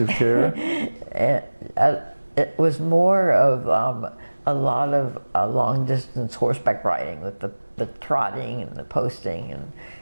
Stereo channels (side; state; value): both; inverted; correlation -1.00